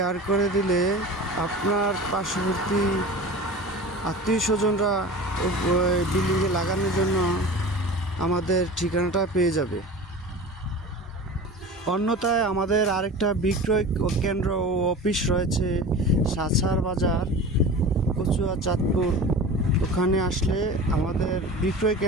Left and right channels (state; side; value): normal; both; correlation 0.35